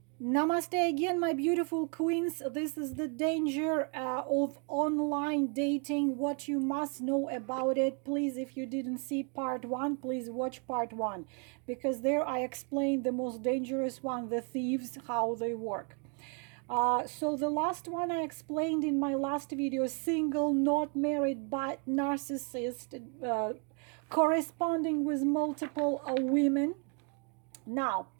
Namaste again, my beautiful queens. This is the danger of online dating, what you must know about it. Please, if you didn't see part one, please watch part one, because there I explained the most dangerous one, the thieves, how they work. So the last one I explained in my last video, single, not married, but narcissist, corresponding with multiple women. Now,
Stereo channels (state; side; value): quieter; left; 37.1 dB